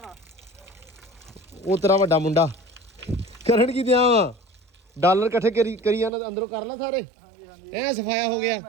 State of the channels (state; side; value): drops out; left; at 6.1 s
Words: ਆ? ਉਹ ਤੇਰਾ ਵੱਡਾ ਮੁੰਡਾ। ਕਰਨ ਕੀ ਦਿਆਂ ਵਾ? ਡਾਲਰ ਇਕੱਠੇ ਕਰੀ ਜਾਂਦਾ ਅੰਦਰੋਂ ਕਰ ਲੈ ਸਾਰੇ। ਹਾਂਜੀ ਹਾਂਜੀ ਐ ਸਫਾਇਆ ਹੋ ਗਿਆ।